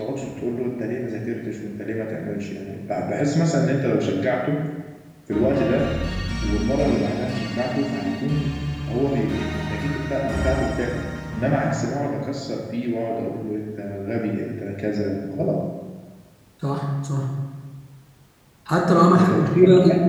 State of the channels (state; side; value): identical; both; correlation 1.00